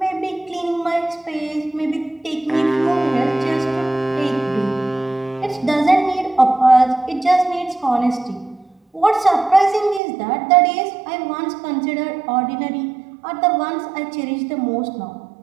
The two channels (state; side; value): drops out; left; at 10.0 s